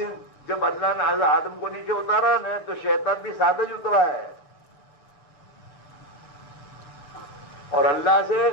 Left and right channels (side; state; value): right; late; 6.8 ms